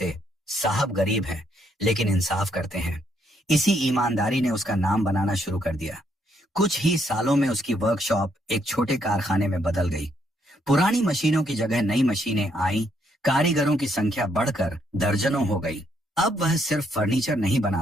साहब गरीब हैं लेकिन इंसाफ करते हैं। इसी ईमानदारी ने उसका नाम बनाना शुरू कर दिया। कुछ ही सालों में उसकी वर्कशॉप एक छोटे कारखाने में बदल गई। पुरानी मशीनों की जगह नई मशीनें आई, कारीगरों की संख्या बढ़कर दर्जनों हो गई। अब वह सिर्फ फर्नीचर नहीं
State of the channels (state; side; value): normal; both; correlation 0.73